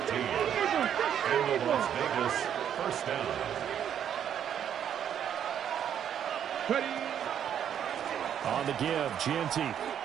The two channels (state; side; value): quieter; left; 9.2 dB